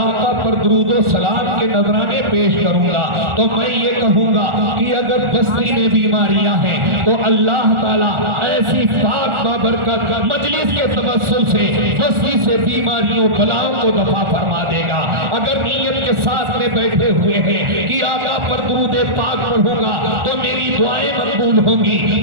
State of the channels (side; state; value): left; late; 1.4 ms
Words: پر درود و سلام کے نذرانے پیش کروں گا، تو میں یہ کہوں گا کہ اگر بستی میں بیماریاں ہیں تو اللہ تعالیٰ ایسی پاک بابرکت مجلس کے توسل سے بستی سے بیماریوں بلاؤں کو دفع فرما دے گا۔ اگر نیت کے ساتھ میں بیٹھے ہوئے ہیں کہ آقا پر درود پاک پڑھوں گا تو میری دعائیں مقبول ہوں